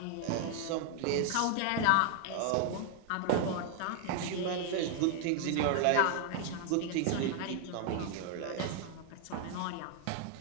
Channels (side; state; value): both; different; correlation 0.00